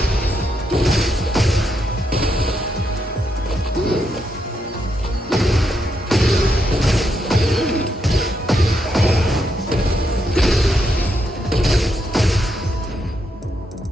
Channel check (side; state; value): both; normal; correlation 0.80